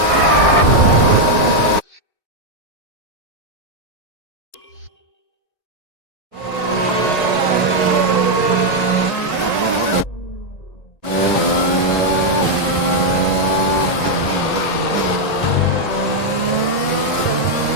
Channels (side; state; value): right; late; 1.8 ms